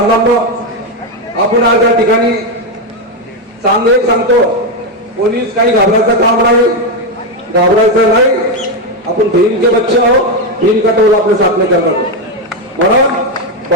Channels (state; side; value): normal; both; correlation 0.07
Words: आपण आज या ठिकाणी एक सांगतो पोलीस काही घाबरायचं काम नाही, घाबरायचं नाही. आपण भीम के बच्चे आहो, भीम का टोल आपले साथ में करणार. म्हणून